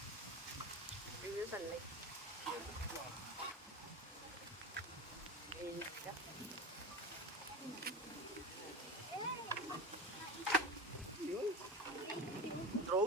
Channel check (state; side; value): normal; both; correlation 0.28